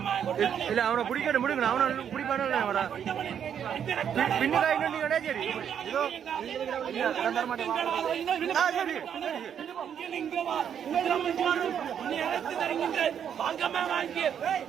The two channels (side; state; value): left; quieter; 8.6 dB